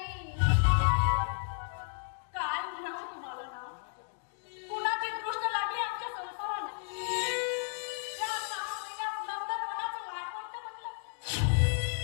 काय म्हणावं तुम्हाला ना? कुणाची दृष्ट लागली आमच्या संसाराला? या 6 महिन्यात नंदनवनाचं लाडवंत बनलं.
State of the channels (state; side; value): silent; right; digital silence